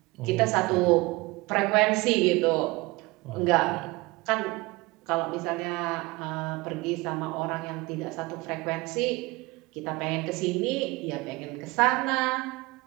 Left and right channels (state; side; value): quieter; left; 22.9 dB